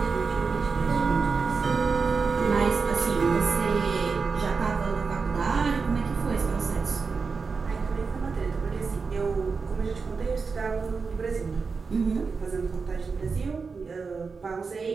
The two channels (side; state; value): left; quieter; 4.9 dB